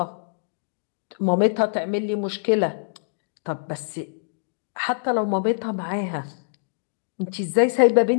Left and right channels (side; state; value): right; silent; digital silence